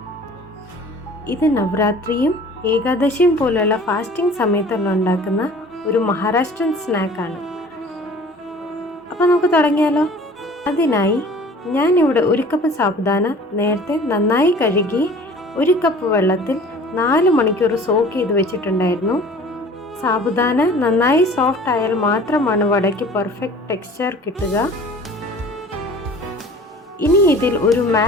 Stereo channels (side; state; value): both; normal; correlation 0.47